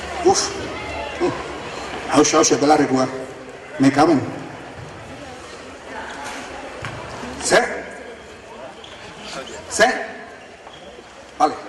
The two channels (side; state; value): both; identical; correlation 1.00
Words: Hauxe, belarrikua. Me caben. ¿Se? Vale.